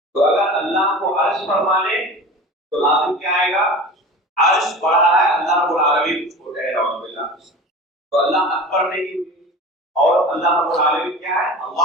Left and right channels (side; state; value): both; normal; correlation 0.35